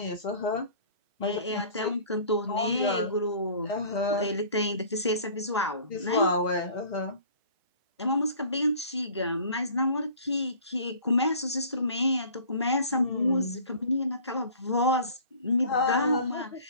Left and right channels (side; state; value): both; inverted; correlation -0.47